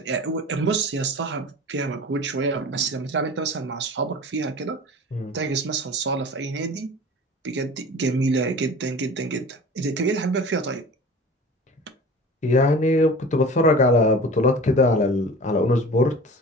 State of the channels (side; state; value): both; normal; correlation 0.39